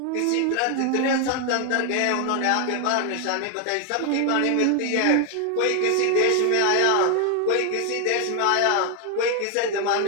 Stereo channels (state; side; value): different; both; correlation 0.01